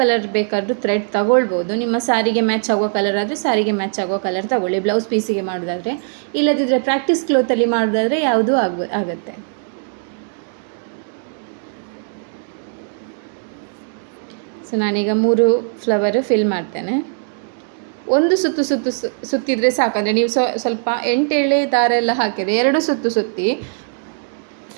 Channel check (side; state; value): left; silent; 66 dB below the other